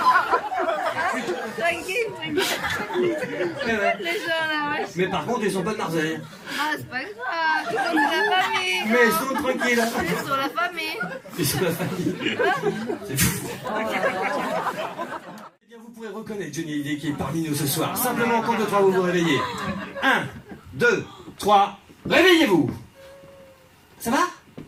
Tranquille. Ouais. Les gens là, ouais. Mais par contre, ils sont pas de Marseille. Ah, c'est pas grave. Ils sont de la famille. Mais ils sont tranquilles. Ils sont la famille. Ils sont la famille. C'est fou. Eh bien, vous pourrez reconnaître Johnny Hallyday qui est parmi nous ce soir. Simplement, en compte de 3, vous vous réveillez. 1, 2, 3, réveillez-vous. Ça va? Ouais.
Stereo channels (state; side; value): identical; both; correlation 1.00